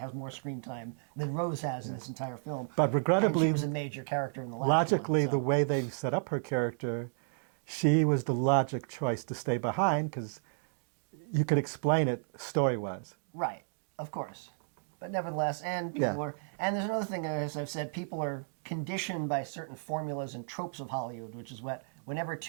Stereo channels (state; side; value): silent; left; digital silence